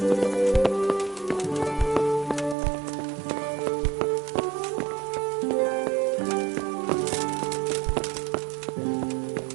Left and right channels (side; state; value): left; drops out; at 2.6 s